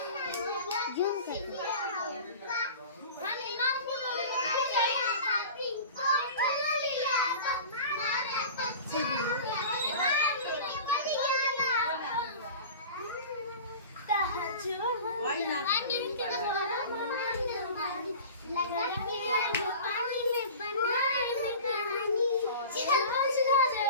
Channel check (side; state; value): both; inverted; correlation -0.37